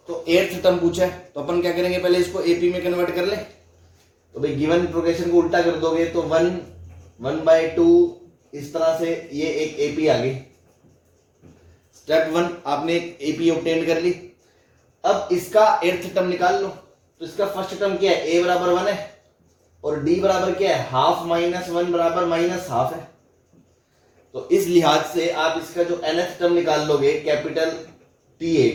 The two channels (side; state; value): both; identical; correlation 1.00